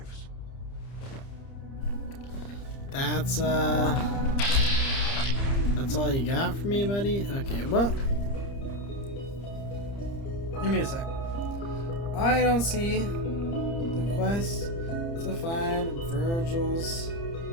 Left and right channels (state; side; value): late; right; 30 ms